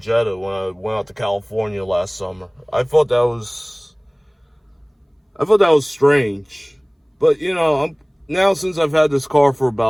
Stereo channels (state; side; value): identical; both; correlation 1.00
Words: when I went out to California last summer. I thought that was strange. But, you know, now since I've had this car for